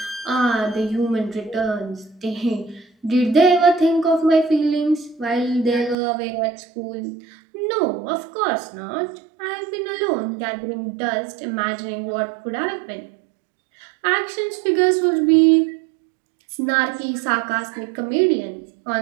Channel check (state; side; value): drops out; left; at 6.0 s